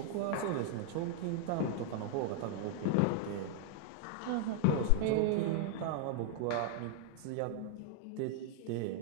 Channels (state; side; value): different; both; correlation 0.00